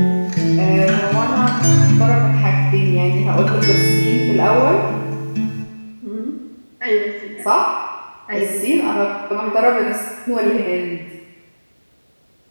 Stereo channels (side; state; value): both; inverted; correlation -1.00